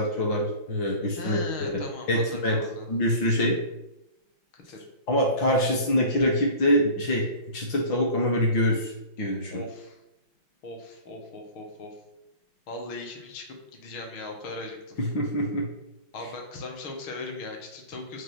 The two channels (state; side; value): late; right; 5.8 ms